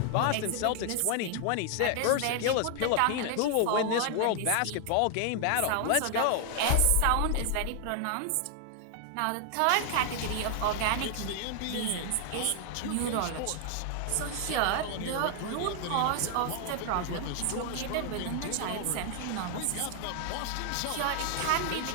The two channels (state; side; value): different; both; correlation 0.00